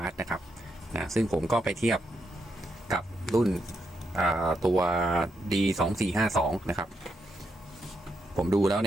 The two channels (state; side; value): normal; both; correlation 0.81